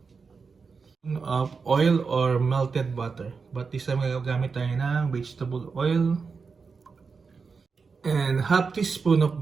Of oil or melted butter. But this time gagamit tayo ng vegetable oil. And half teaspoon of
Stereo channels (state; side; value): quieter; left; 5.0 dB